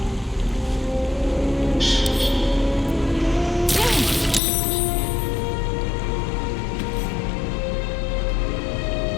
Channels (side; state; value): right; drops out; at 4.4 s